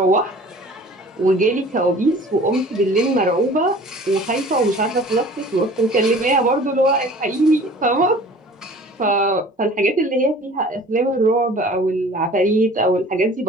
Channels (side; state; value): both; normal; correlation 0.47